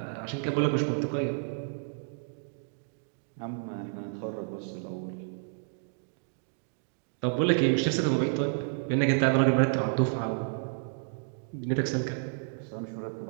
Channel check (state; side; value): silent; left; digital silence